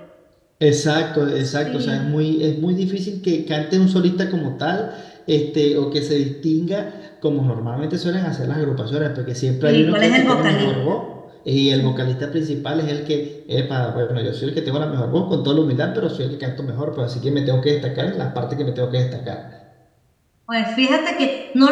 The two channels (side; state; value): both; identical; correlation 1.00